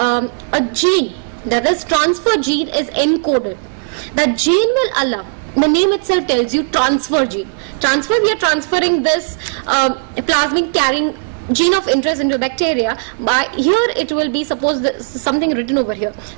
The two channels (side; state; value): left; silent; digital silence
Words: gene, that is transfer gene is encoded. That gene will allow, the name itself tells you transfer gene. Transfer, we are transferring this plasmid carrying gene of interest into bacteria. By here it will be, suppose this, something written over here,